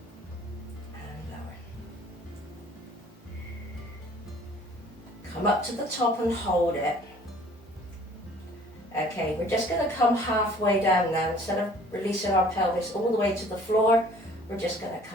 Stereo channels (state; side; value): normal; both; correlation 0.53